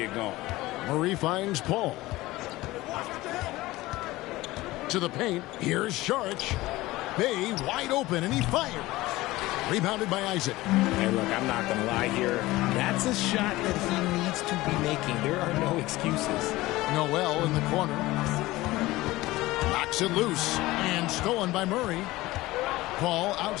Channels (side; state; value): right; quieter; 18.6 dB